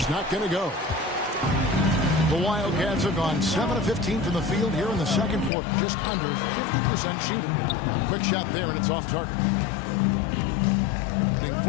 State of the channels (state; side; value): drops out; right; at 5.5 s